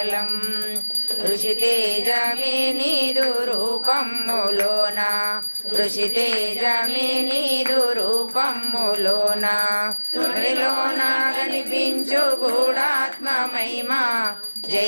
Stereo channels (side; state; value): both; inverted; correlation -1.00